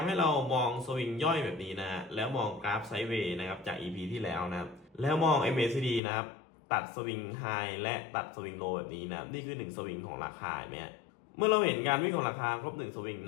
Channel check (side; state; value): right; drops out; at 6.0 s